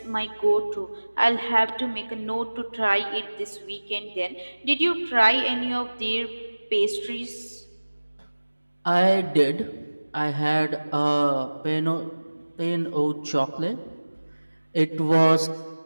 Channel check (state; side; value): inverted; both; correlation -1.00